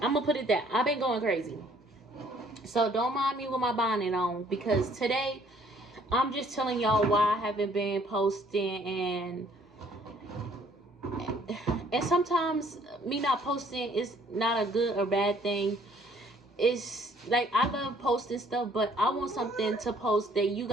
I'm gonna put it that I've been going crazy. So don't mind me with my bonnet on, because today I'm just telling y'all why I haven't been posting. And sometimes me not posting is not a good or bad thing. It's like, I love posting stuff, but I want something to post that you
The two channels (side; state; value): both; normal; correlation 0.61